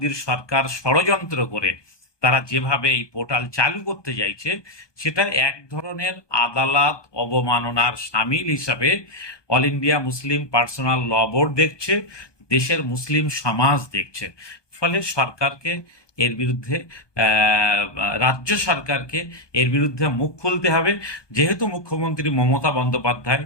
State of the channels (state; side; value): late; right; 1.2 ms